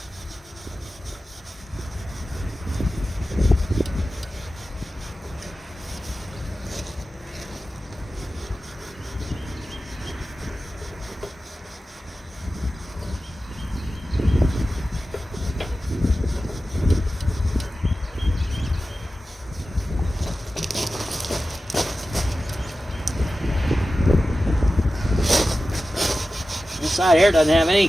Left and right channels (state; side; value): normal; both; correlation 0.94